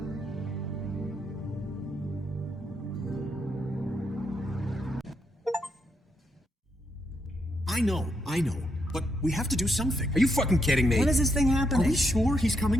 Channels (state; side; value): normal; both; correlation 0.79